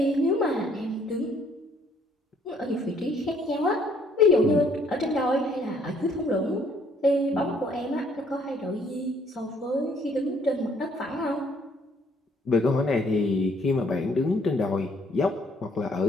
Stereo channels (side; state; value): both; normal; correlation 0.64